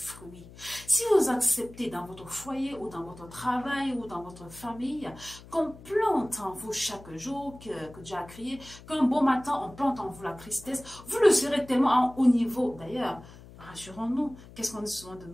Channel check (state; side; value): noise; left; hum, 19 dB below the sound